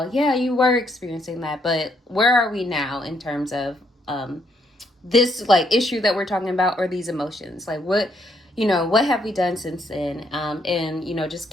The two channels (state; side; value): normal; both; correlation 0.72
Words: yeah, you were experiencing that, but where are we now in terms of this like issue that we're talking about, or these emotions? Like what have we done since then? And just